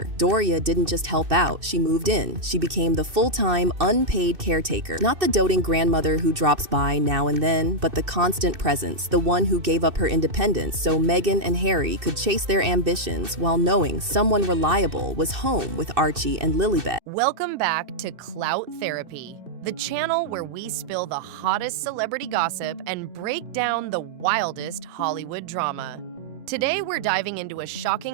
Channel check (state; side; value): late; left; 2.6 ms